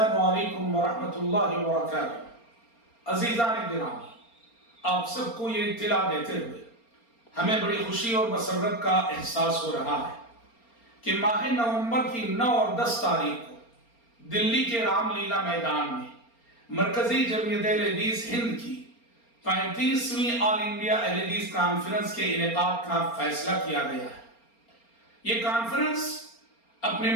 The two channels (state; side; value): late; right; 4.3 ms